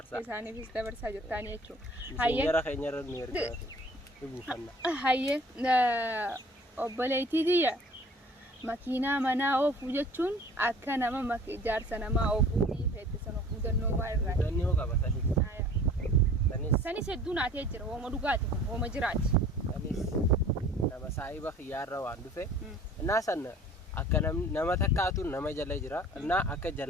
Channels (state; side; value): normal; both; correlation 0.49